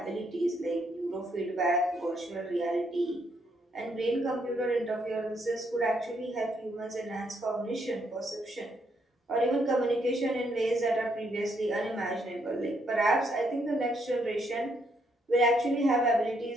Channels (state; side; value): normal; both; correlation 0.73